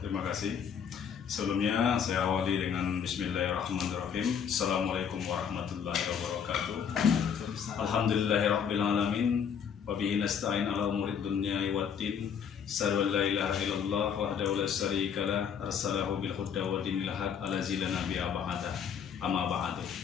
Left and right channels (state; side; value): quieter; right; 7.5 dB